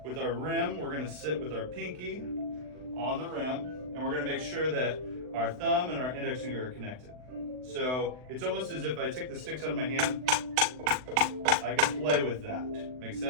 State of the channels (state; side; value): late; left; 39 ms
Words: With our rim, we're gonna sit with our pinky on the rim, and we're gonna make sure that our thumb and our index finger are connected. So it's almost as if I take the sticks out of my hand, I can play with that. Make